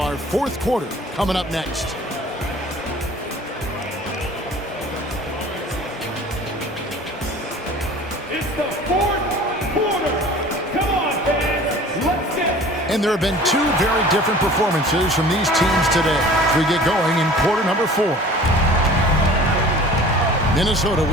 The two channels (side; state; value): both; normal; correlation 0.45